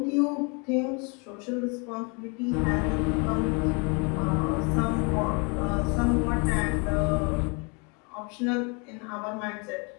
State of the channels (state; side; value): quieter; right; 33.3 dB